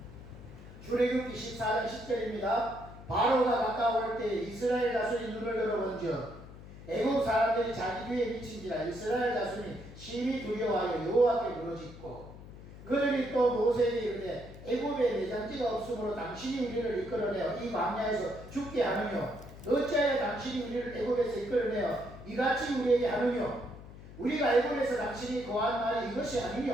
출애굽기 14장 10절입니다. 바로가 가까울 때 이스라엘 자손이 눈을 들어본즉 애굽 사람들이 자기 뒤에 미친지라 이스라엘 자손이 심히 두려워하여 여호와께 부르짖고 그들이 또 모세에게 이르되 애굽에 내장지가 없으므로 당신이 우리를 이끌어내어 이 광야에서 죽게 하느뇨 어찌하여 당신이 우리를 애굽에서 이끌어내어 이같이 우리에게 하느뇨 우리가 애굽에서 당신이 거한 말이 이것이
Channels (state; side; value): noise; left; hum, 16 dB below the sound